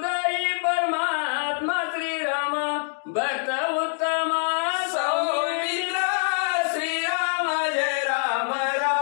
परमात्मा श्रीराम भक्त उत्तम सौमित्र श्रीराम जय राम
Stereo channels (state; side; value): silent; right; digital silence